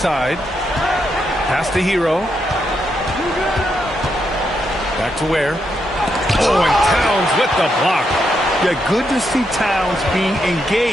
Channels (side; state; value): both; normal; correlation 0.81